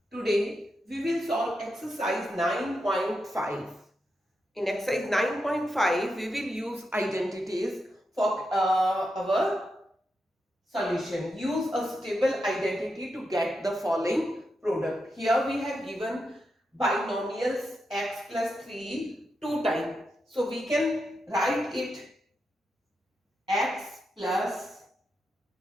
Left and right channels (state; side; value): normal; both; correlation 0.86